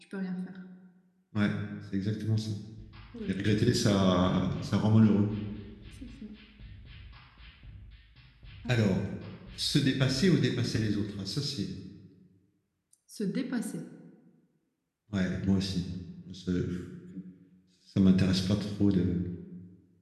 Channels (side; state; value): both; identical; correlation 1.00